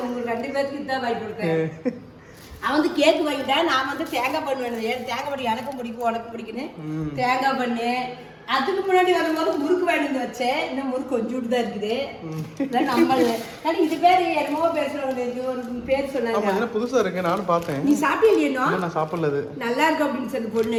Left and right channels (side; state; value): both; identical; correlation 1.00